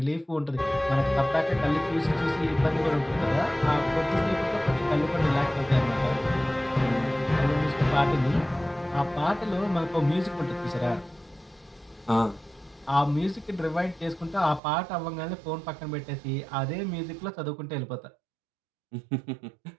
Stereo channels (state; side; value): drops out; left; at 14.6 s